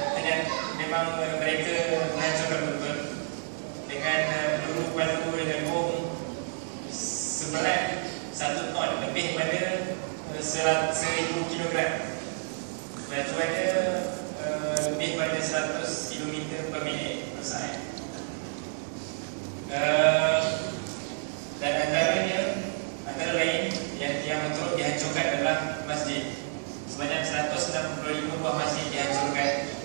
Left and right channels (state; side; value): silent; left; digital silence